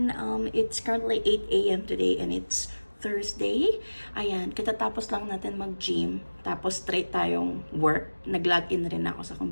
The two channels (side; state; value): both; inverted; correlation -1.00